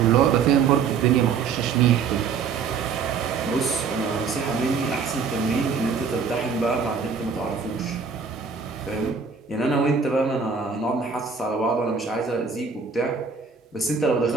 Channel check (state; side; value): quieter; left; 5.6 dB